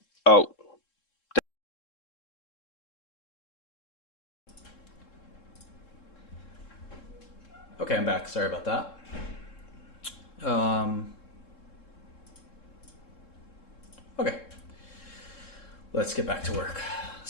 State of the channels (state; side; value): late; right; 3.7 ms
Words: Oh. Okay, I'm back. Sorry about that. Okay. Let's get back to work.